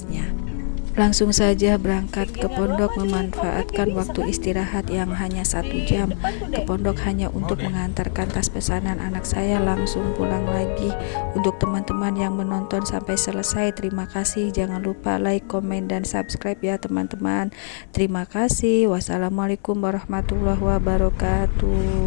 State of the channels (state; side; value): silent; right; 64 dB below the other